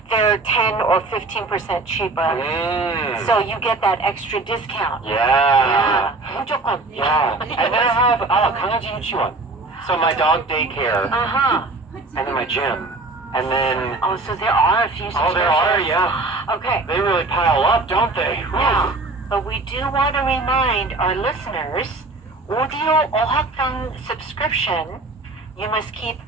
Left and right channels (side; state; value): left; quieter; 3.3 dB